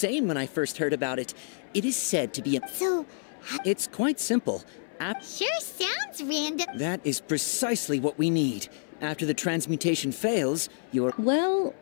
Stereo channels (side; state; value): right; silent; 59 dB below the other